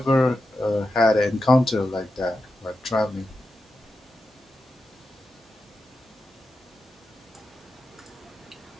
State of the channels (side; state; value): both; normal; correlation 0.90